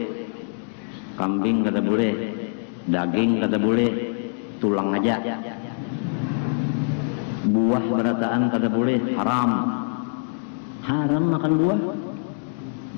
kambing kada boleh, daging kada boleh, tulang aja. Buah berataan kada boleh, haram. Haram makan buah.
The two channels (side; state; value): right; silent; digital silence